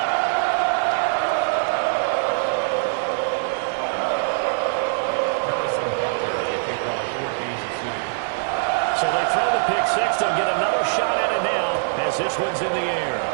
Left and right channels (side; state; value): left; silent; digital silence